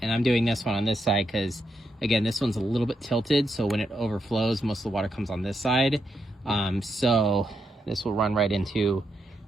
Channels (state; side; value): normal; both; correlation 0.81